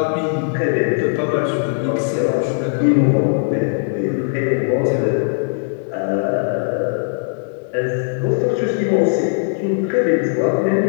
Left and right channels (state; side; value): silent; right; digital silence